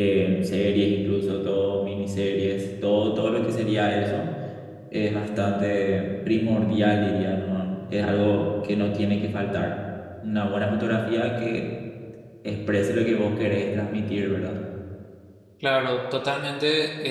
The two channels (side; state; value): both; identical; correlation 1.00